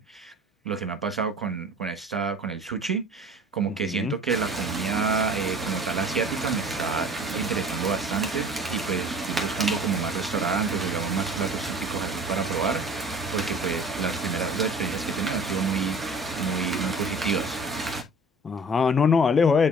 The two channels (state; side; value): normal; both; correlation 0.46